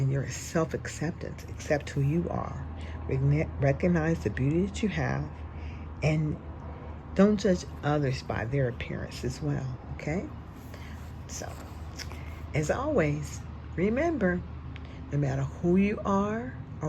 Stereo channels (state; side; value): identical; both; correlation 1.00